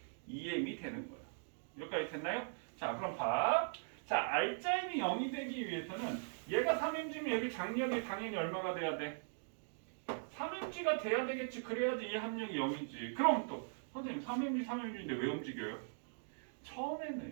EM이 되는 거야. 여기까지 됐나요? 자, 그럼 봐. 자, R자임이 0이 되기 위해서는 얘가 3mg면 여기 장력이 당연히 얼마가 돼야 돼? 3mg가 돼야 되겠지. 그래야지 이 합력이 0이지. 그럼 또 선생님 3mg인데 왜 움직여요?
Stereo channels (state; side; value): silent; left; digital silence